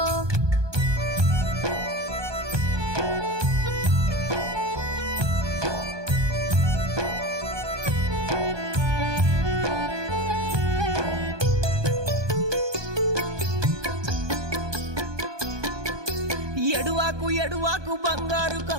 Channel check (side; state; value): left; late; 1.2 ms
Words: ఎడువాకు ఎడువాకు బంగారు